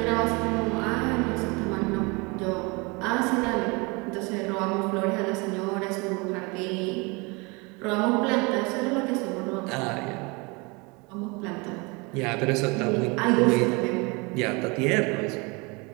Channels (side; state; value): left; quieter; 27.8 dB